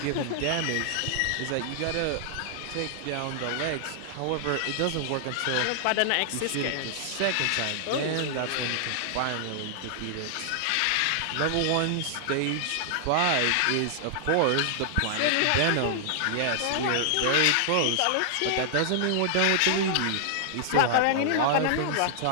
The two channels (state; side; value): different; both; correlation 0.00